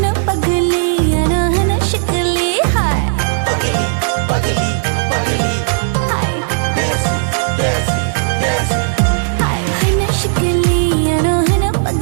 पगली याना हना शिकली हाय पगली पगली पगली हाय देसी देसी देसी हाय हना शिकली याना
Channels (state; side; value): silent; left; digital silence